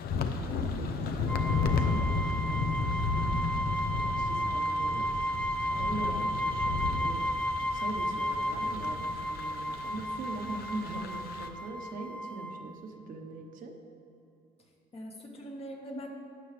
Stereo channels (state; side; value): normal; both; correlation 0.68